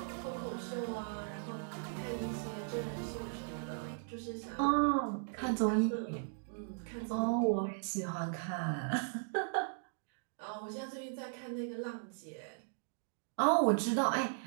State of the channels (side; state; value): left; silent; digital silence